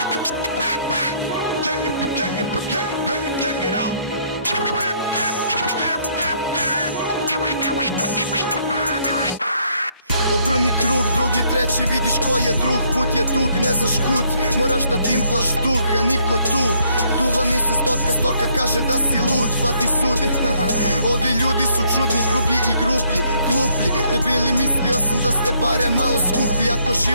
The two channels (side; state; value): both; inverted; correlation -0.67